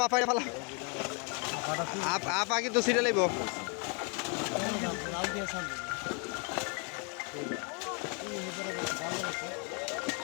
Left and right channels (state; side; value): quieter; right; 35.9 dB